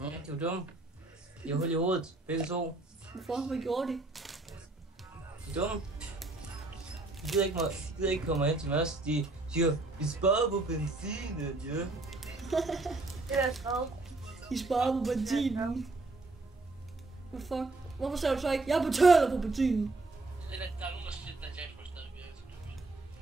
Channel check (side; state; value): left; quieter; 3.2 dB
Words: Ja, de var dumme. De har hul i hovedet, begge to. Hvorfor? Hvad gjorde de? De er dumme. De gider ikke komme hen til os. De siger, vi sparer på benzinen, ja. Det er skrevet. De sparer på benzinen. Hvad fuck? Hvorfor sagde du så ikke, jeg betaler på benzinen?